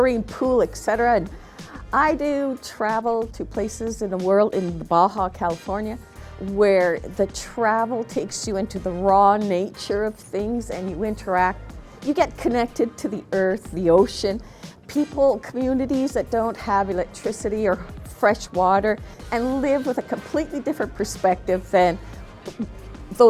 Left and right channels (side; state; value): both; identical; correlation 1.00